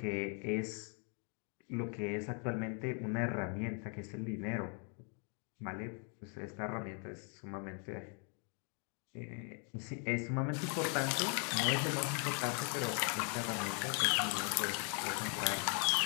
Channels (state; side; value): quieter; right; 39.8 dB